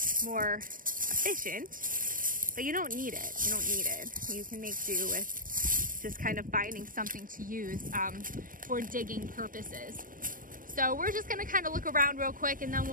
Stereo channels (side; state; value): left; late; 0.40 ms